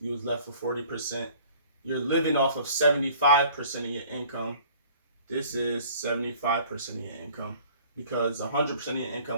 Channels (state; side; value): inverted; both; correlation -0.51